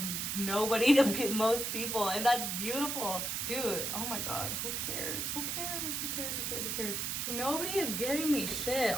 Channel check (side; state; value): right; noise; hiss, 1 dB below the sound